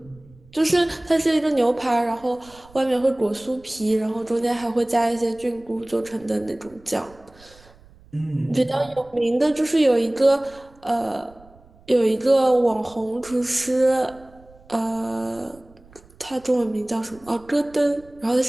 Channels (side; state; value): right; noise; rumble, 26 dB below the sound